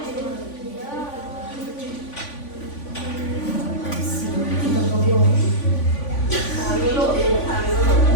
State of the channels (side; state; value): right; late; 3.5 ms